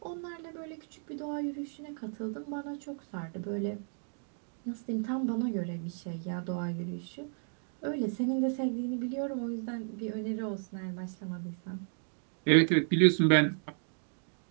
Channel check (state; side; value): silent; left; 55 dB below the other